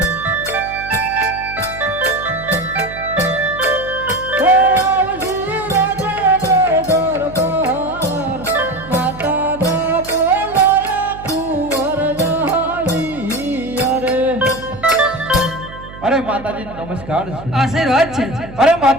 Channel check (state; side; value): noise; right; hum, 16 dB below the sound